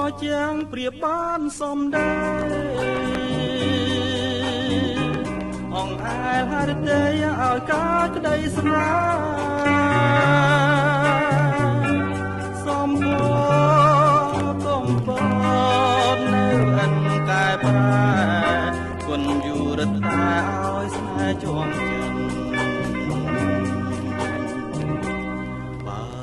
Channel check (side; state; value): both; identical; correlation 1.00